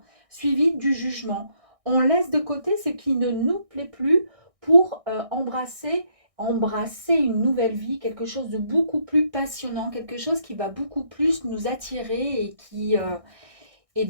suivi du jugement. On laisse de côté ce qui ne nous plaît plus pour embrasser une nouvelle vie, quelque chose de beaucoup plus passionnant, quelque chose qui va beaucoup plus nous attirer et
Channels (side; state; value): left; late; 1.6 ms